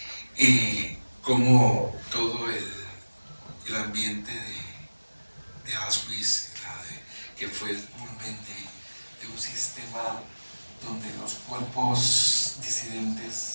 ahí. Como todo el ambiente de Auschwitz, que fue el culmen de un sistema donde los cuerpos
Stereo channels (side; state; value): both; inverted; correlation -1.00